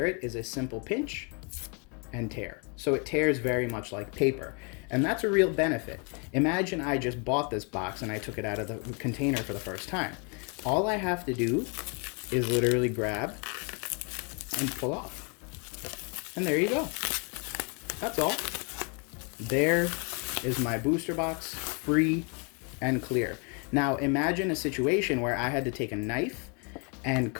it is a simple pinch and tear. So it tears very much like paper. And that's a real benefit. Imagine I just bought this box and I took it out of the container for the first time. All I have to do is literally grab and pull off. And there you go. That's all. There is my booster box, free and clear. Now imagine a situation where I had to take a knife and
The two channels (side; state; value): right; quieter; 35.3 dB